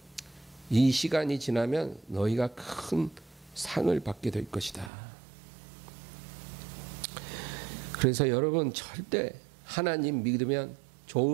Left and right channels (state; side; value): drops out; left; at 4.9 s